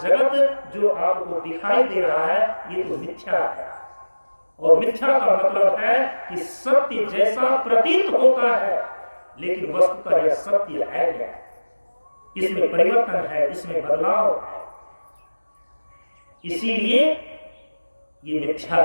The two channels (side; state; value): both; inverted; correlation -1.00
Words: जो आपको दिखाई दे रहा है ये तो मिथ्या है। और मिथ्या का मतलब है कि सत्य जैसा प्रतीत होता है लेकिन वस्तुतः यह सत्य है क्या? इसमें परिवर्तन है, इसमें बदलाव है, इसीलिए ये मिथ्या